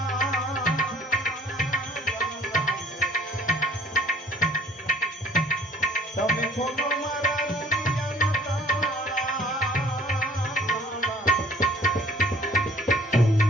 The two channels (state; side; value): normal; both; correlation 0.54